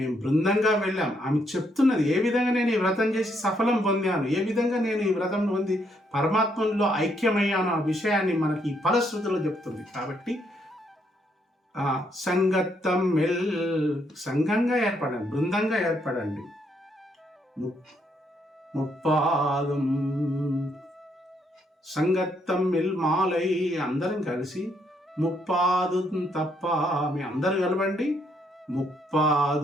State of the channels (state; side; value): normal; both; correlation 0.73